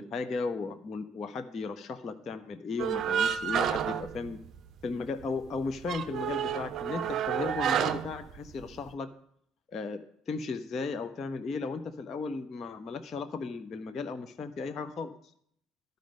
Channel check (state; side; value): normal; both; correlation 0.63